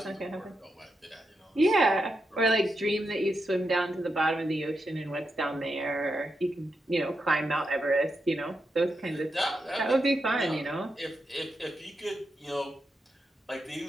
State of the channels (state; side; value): normal; both; correlation 0.85